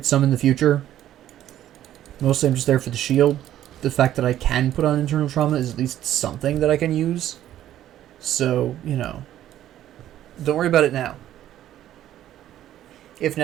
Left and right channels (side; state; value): left; quieter; 12.3 dB